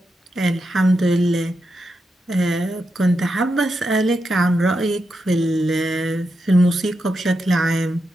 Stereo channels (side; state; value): both; normal; correlation 0.86